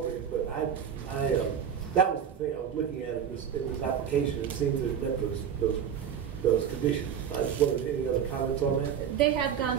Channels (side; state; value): left; quieter; 8.2 dB